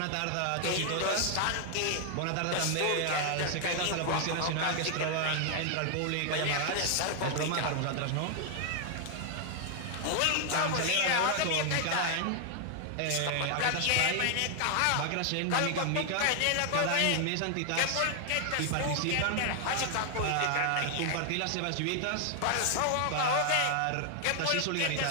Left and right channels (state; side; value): different; both; correlation 0.00